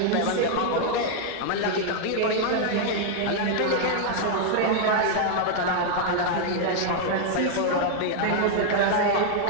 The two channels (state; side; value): different; both; correlation 0.00